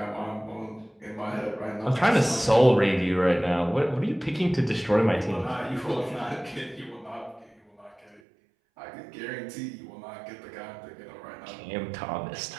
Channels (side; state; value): left; drops out; at 8.2 s